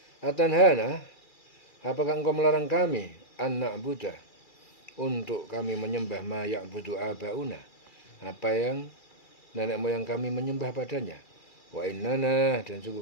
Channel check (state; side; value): late; right; 2.3 ms